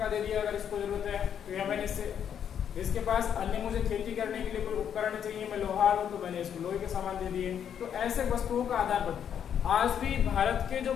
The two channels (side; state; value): right; quieter; 8.7 dB